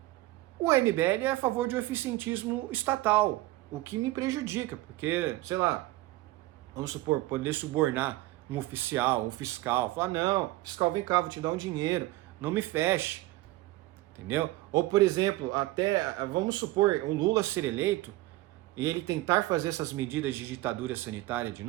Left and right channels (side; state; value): left; quieter; 18.2 dB